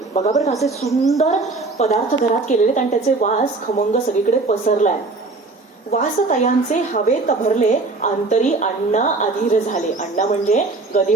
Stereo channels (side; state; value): left; quieter; 3.5 dB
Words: बघा बरं असे सुंदर पदार्थ घरात केलेले आणि त्याचे वास खमंग सगळीकडे पसरलाय. वासतयांचे हवेत भरले, अंतरी अण्णा अधीर झाले. अण्णा म्हणजे ग दि